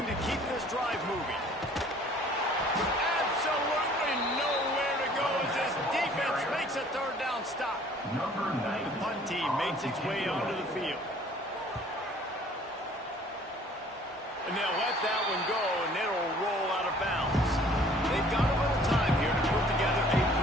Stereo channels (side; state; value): both; normal; correlation 0.54